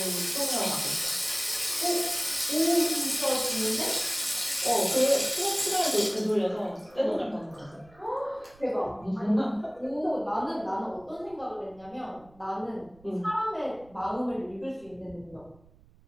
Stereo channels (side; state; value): right; noise; rumble, 27 dB below the sound